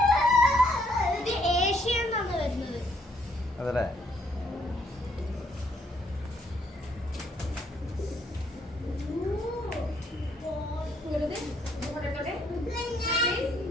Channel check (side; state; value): both; normal; correlation 0.69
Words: ഇത് ഏഷ്യ എന്നാണ് വരുന്നത്. അതല്ലേ?